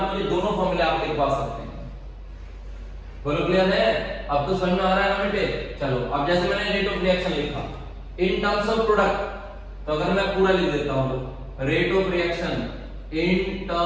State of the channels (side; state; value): both; identical; correlation 1.00